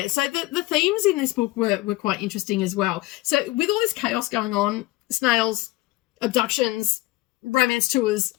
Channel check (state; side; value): quieter; right; 19.3 dB